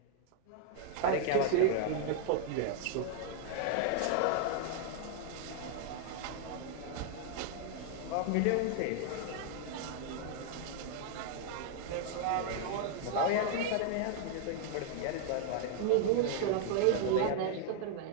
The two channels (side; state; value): both; different; correlation 0.00